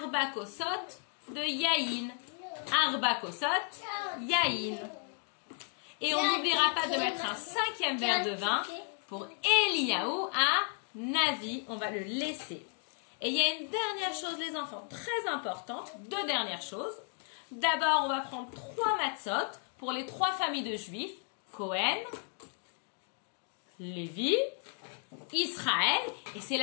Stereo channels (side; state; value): right; quieter; 38.6 dB